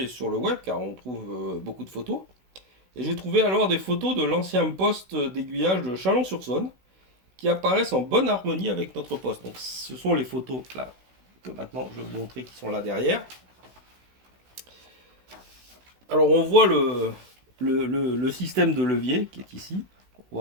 sur le web car on trouve beaucoup de photos. Et j'ai trouvé alors des photos de l'ancien poste d'aiguillage de Chalon-sur-Saône qui apparaissent en bonne harmonie avec notre poste. Donc ce sont les photos là que maintenant je vais vous montrer qui sont là derrière. Alors on voit le système de levier qui est ici. On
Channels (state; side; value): late; left; 16 ms